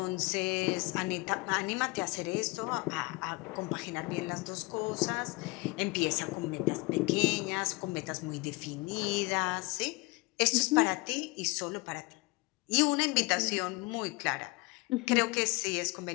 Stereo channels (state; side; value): quieter; right; 25.1 dB